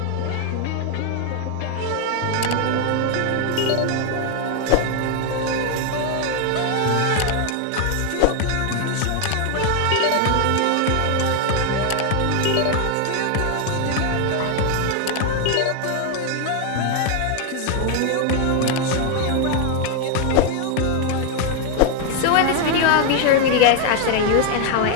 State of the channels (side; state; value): both; different; correlation 0.01